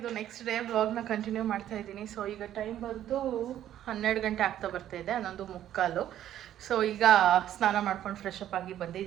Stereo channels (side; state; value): left; quieter; 11.6 dB